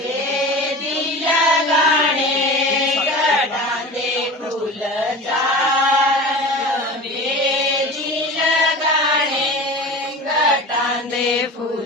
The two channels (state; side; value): normal; both; correlation 0.34